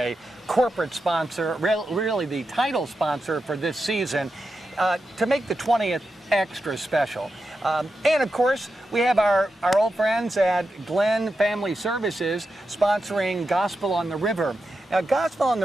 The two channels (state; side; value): normal; both; correlation 0.89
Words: corporate sponsor, really the title sponsor for this season, to make the 20th extra special. And of course, we have our old friends at Glenn Family Services sponsoring Gospel on the River. Now, Gospel on